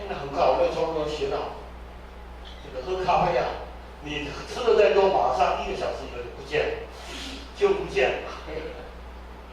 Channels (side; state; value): both; identical; correlation 1.00